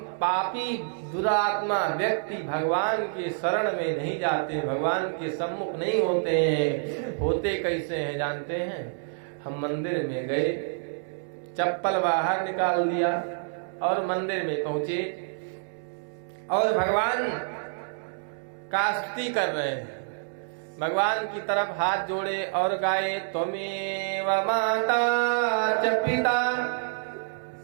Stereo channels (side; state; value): left; silent; digital silence